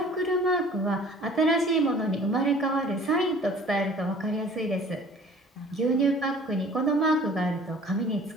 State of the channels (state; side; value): normal; both; correlation 0.49